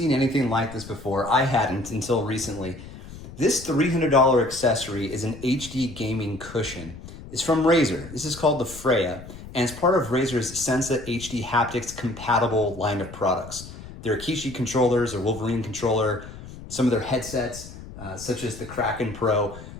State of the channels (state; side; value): noise; left; rumble, 15 dB below the sound